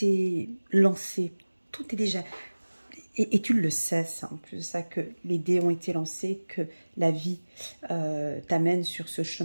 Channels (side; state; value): both; inverted; correlation -1.00